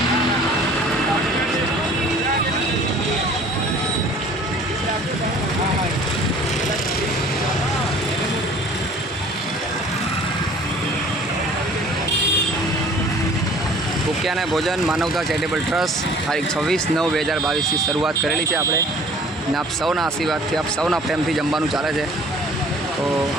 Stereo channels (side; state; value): both; normal; correlation 0.51